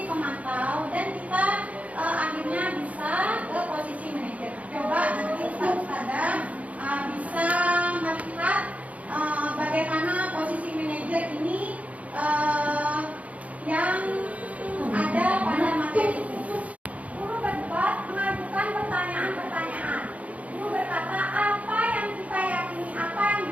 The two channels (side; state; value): left; late; 0.068 ms